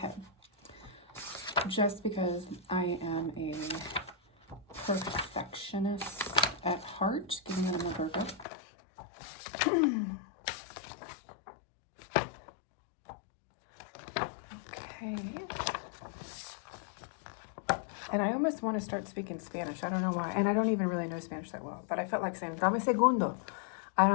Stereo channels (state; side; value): drops out; right; at 8.5 s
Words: just because I am a perfectionist at heart, give me another burger. Okay. And I almost want to start speaking Spanish. I don't know why. And I don't even really know Spanish that well. But I felt like saying, dame segundo. I